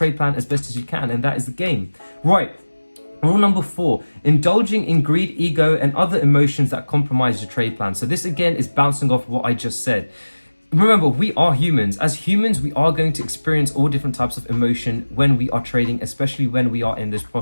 plan as best as you can, and that is the game. Right. Rule number 4, indulging in greed, ego, and other emotions that compromise your trade plan. So this again is bouncing off what I just said. Remember, we are humans. As humans, we are going to experience all different types of emotion when we are trading, especially when we are in those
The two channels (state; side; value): inverted; both; correlation -1.00